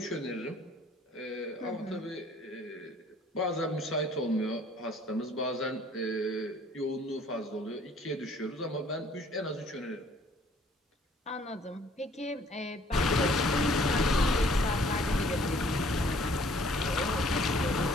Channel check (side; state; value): both; normal; correlation 0.58